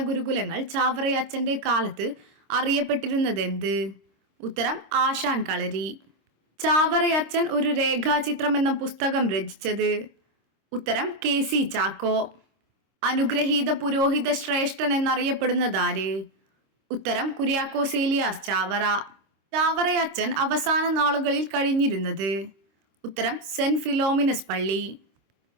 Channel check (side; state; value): left; late; 26 ms